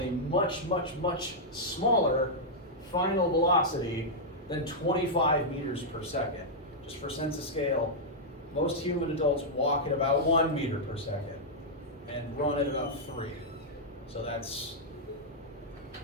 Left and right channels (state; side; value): normal; both; correlation -0.07